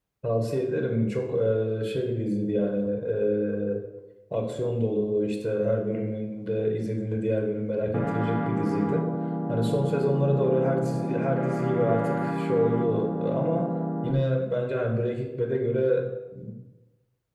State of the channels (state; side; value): identical; both; correlation 1.00